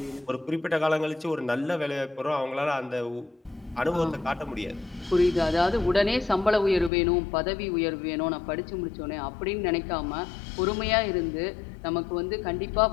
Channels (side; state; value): right; drops out; at 6.9 s